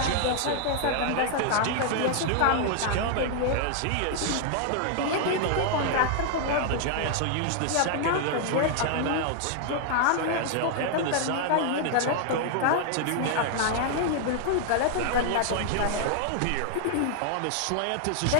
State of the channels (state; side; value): different; both; correlation 0.00